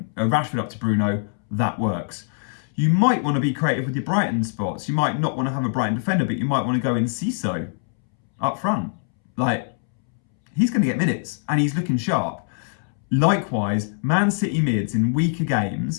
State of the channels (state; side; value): silent; right; 64 dB below the other